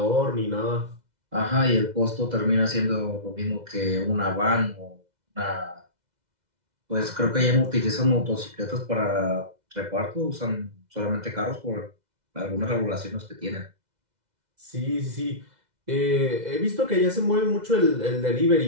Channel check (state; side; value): late; left; 2.0 ms